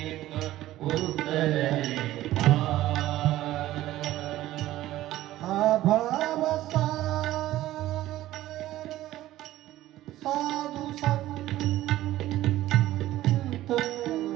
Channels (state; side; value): quieter; left; 15.0 dB